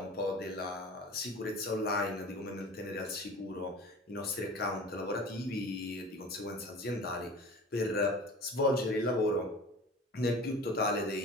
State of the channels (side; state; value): both; normal; correlation 0.39